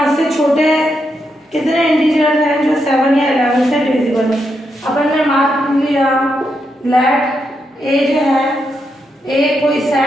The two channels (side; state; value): both; normal; correlation 0.82